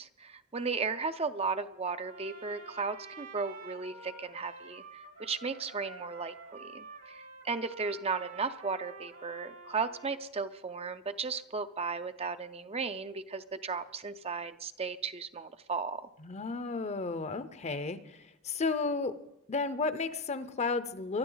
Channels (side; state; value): both; normal; correlation 0.07